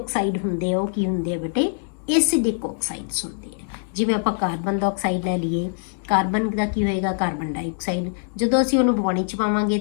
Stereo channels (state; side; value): silent; right; digital silence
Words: ਹੁੰਦੇ ਆ ਉਹ ਕੀ ਹੁੰਦੇ ਆ ਬੇਟੇ, ਐਸਿਡਿਕ ਆਕਸਾਈਡਸ ਹੁੰਦੇ ਆ। ਜਿਵੇਂ ਆਪਾਂ ਕਾਰਬਨ ਦਾ ਆਕਸਾਈਡ ਲੈ ਲਈਏ, ਕਾਰਬਨ ਦਾ ਕੀ ਹੋਏਗਾ, ਕਾਰਬਨ ਡਾਈਆਕਸਾਈਡ। ਜਦੋਂ ਅਸੀਂ ਉਹਨੂੰ ਪਾਣੀ 'ਚ ਪਾਵਾਂਗੇ